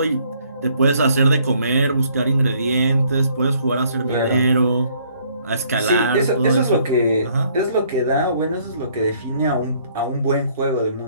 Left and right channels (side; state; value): both; inverted; correlation -0.64